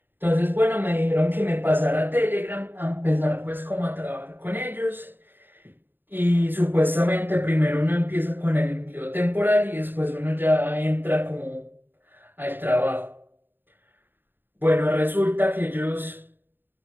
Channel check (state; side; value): late; left; 0.095 ms